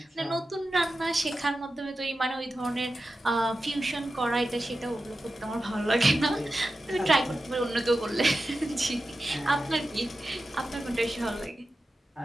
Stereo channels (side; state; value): both; normal; correlation 0.92